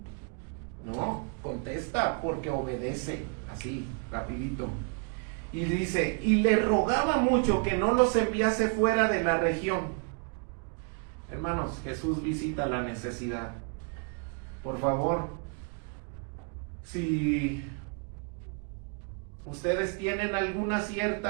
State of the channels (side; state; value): left; quieter; 39.1 dB